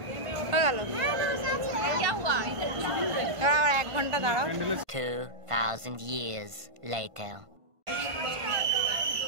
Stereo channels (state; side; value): late; left; 1.5 ms